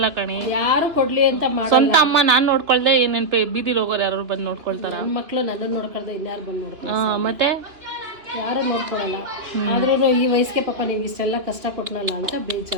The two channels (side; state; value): left; late; 3.0 ms